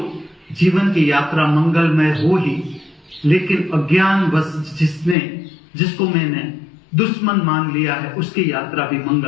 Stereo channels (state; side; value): drops out; right; at 5.2 s